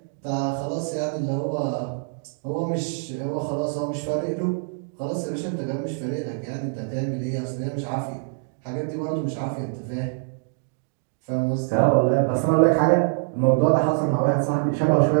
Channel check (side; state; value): left; silent; digital silence